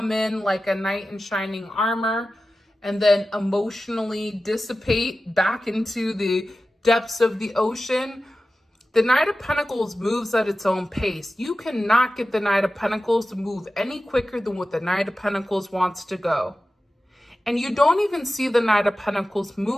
in like a knight in shining armor and then emotionally dissipate back into the depths of the ocean. The Knight of Pentacles moves at its own pace. You cannot get the Knight of Pentacles to move any quicker than what the Knight of Pentacles wants to go. And you don't even see the Knight of Pentacles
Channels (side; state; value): both; normal; correlation 0.94